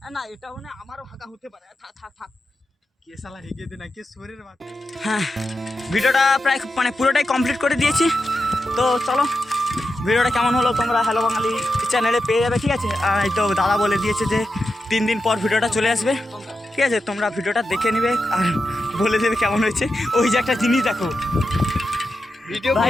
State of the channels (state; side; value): normal; both; correlation 0.89